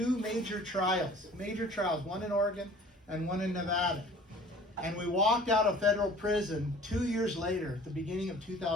major trials, one in Oregon and one in Nevada. And we walked out of federal prison 2 years later, at the beginning of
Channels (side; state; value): both; normal; correlation 0.48